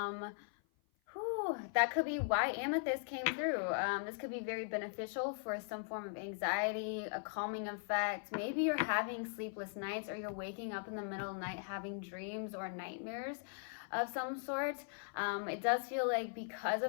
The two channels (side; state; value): right; silent; 51 dB below the other